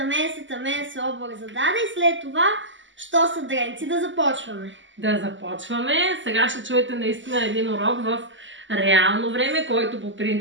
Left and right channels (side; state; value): left; late; 0.55 ms